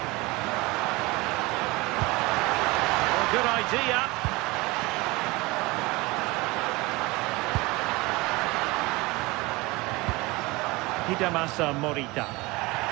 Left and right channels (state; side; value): quieter; left; 23.0 dB